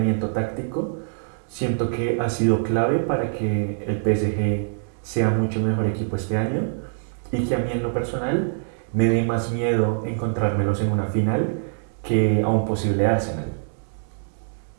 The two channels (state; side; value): silent; left; digital silence